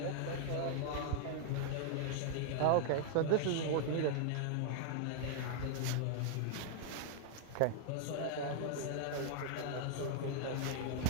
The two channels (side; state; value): both; different; correlation 0.00